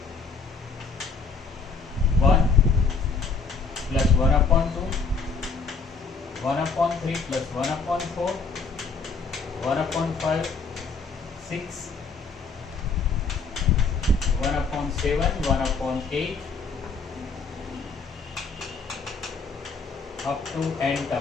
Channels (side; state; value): right; quieter; 4.6 dB